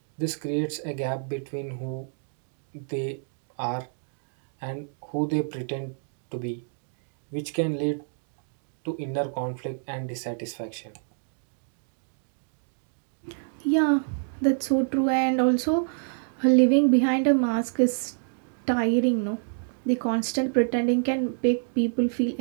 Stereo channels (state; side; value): silent; left; digital silence